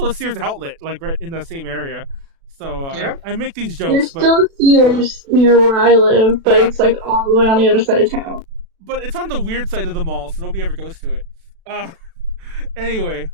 a Sears outlet, like right in the same area. So yep. I make these jokes. There's still Sears near where I live, but it's like all the way on the other side of town. But it's on the weird side of the mall, so nobody ever goes to it. Anyway,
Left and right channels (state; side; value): late; left; 36 ms